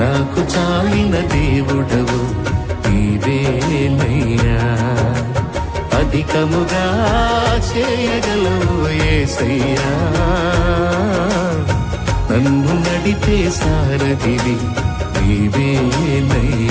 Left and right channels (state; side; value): identical; both; correlation 1.00